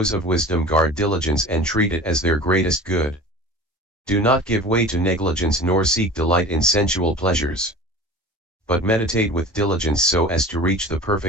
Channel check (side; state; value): both; normal; correlation 0.39